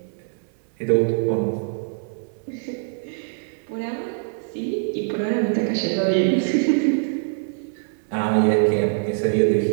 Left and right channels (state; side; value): silent; left; 63 dB below the other